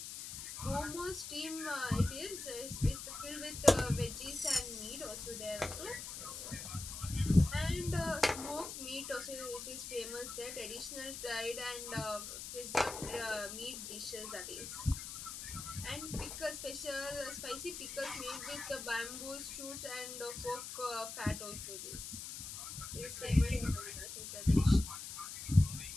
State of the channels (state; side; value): noise; left; hiss, 8 dB below the sound